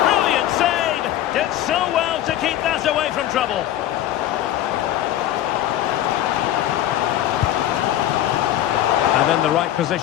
brilliant save! Did so well to keep that away from trouble. And in the right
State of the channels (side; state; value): right; quieter; 12.6 dB